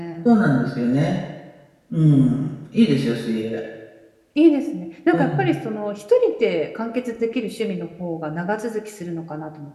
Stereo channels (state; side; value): identical; both; correlation 1.00